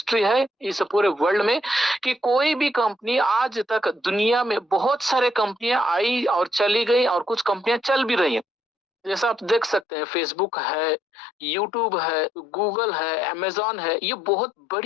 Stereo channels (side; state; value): right; drops out; at 9.9 s